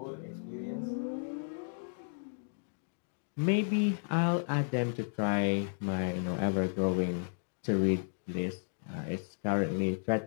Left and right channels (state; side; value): silent; right; digital silence